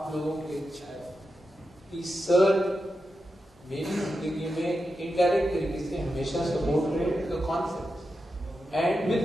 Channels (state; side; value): normal; both; correlation 0.89